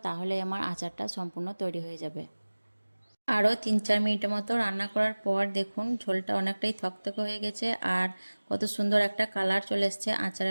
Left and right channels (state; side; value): inverted; both; correlation -1.00